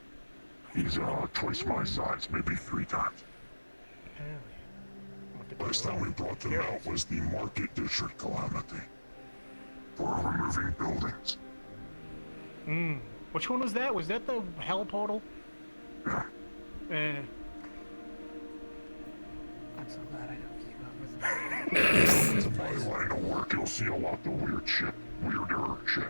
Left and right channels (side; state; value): both; inverted; correlation -1.00